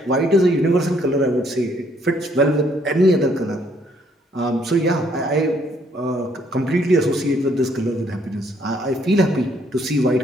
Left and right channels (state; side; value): normal; both; correlation 0.67